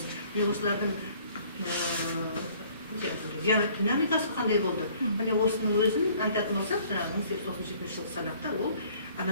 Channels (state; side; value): inverted; both; correlation -0.57